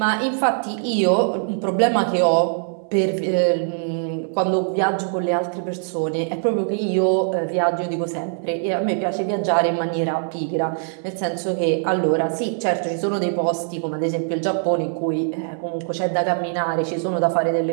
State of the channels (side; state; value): left; silent; digital silence